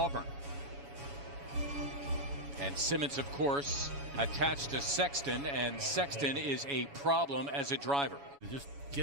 And Simmons, of course, attached to Sexton, and Sexton is a problem as a driver. Just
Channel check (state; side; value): late; left; 7.1 ms